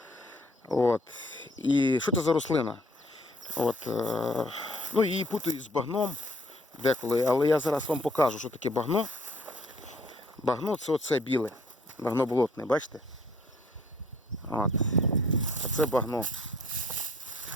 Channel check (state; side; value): normal; both; correlation 0.60